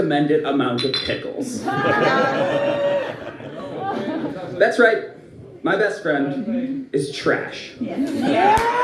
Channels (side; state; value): both; identical; correlation 1.00